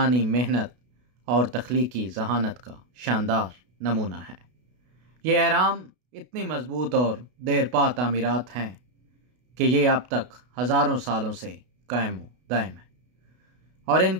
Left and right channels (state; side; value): late; left; 32 ms